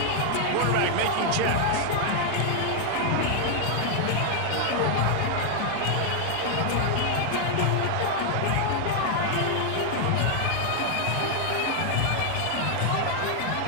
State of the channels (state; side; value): different; both; correlation 0.00